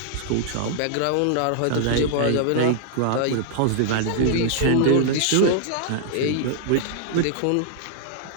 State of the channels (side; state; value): both; different; correlation -0.01